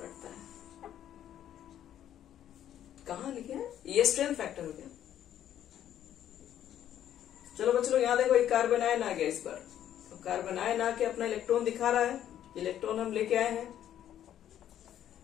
है। कहां लिखे हैं? ये स्ट्रेंथ फैक्टर हो गया। चलो बच्चों यहां देखो, एक कार्बन आयन आ गया इस पर, तो कार्बन आयन आके अपना इलेक्ट्रॉन दिखा रहा है, इलेक्ट्रॉन हम लेके आए हैं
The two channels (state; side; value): quieter; right; 11.0 dB